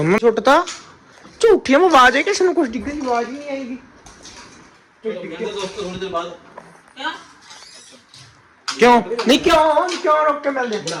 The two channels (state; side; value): identical; both; correlation 1.00